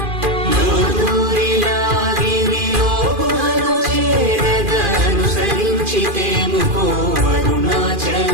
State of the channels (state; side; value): late; left; 2.4 ms